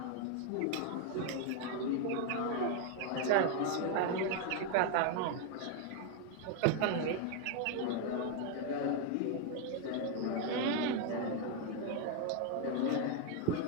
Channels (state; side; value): different; both; correlation 0.01